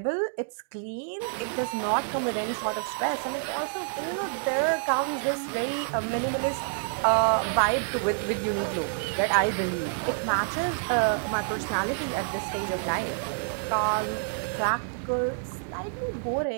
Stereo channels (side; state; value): left; silent; digital silence